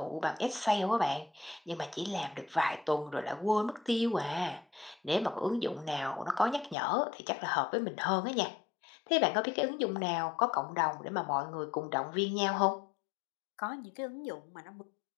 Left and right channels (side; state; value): right; drops out; at 6.8 s